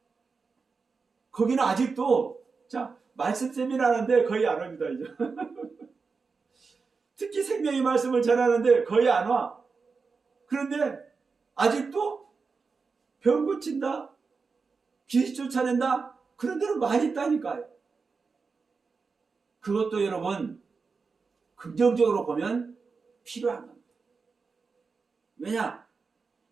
거기는 아직도 자 말씀 세미나하는데 거의 안 옵니다. 이제 특히 생명의 말씀을 전하는데 거의 안 와. 그런데 아직도 병 고친다, 귀신 쫓아낸다, 그런 데는 많이 있다니까요. 그것도 여러분 긍정적으로 보면 필요한 겁니다. 왜냐?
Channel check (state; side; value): quieter; left; 4.8 dB